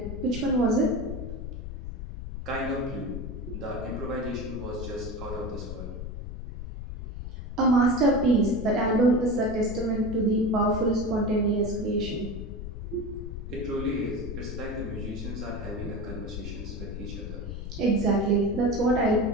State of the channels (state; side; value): noise; left; rumble, 8 dB below the sound